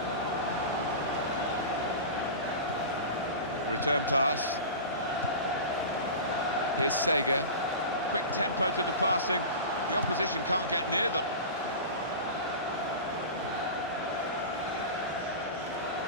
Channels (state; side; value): inverted; both; correlation -0.30